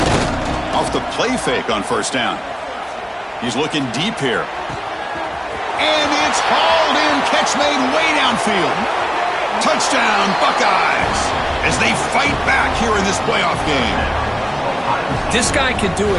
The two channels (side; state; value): both; identical; correlation 1.00